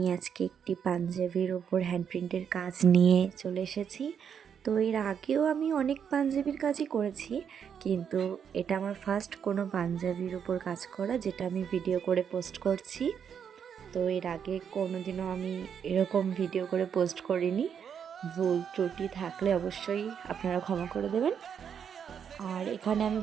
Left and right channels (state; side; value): quieter; left; 7.7 dB